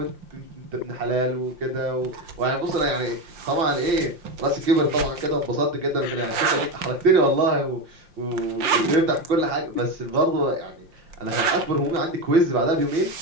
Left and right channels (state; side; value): late; left; 5.7 ms